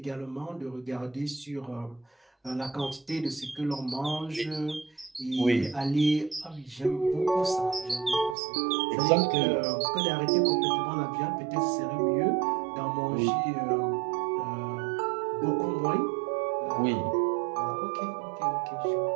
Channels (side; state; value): left; drops out; at 8.3 s